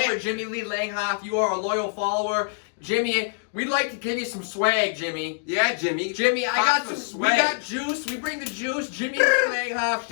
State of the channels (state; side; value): silent; right; digital silence